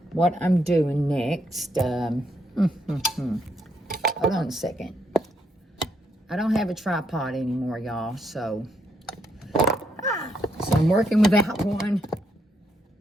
what I'm doing next. Hold on a second. I don't have a tripod anymore, y'all, so I'm working without one.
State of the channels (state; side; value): normal; both; correlation 0.76